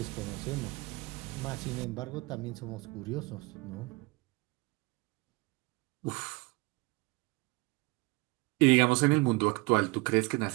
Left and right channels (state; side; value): quieter; left; 24.9 dB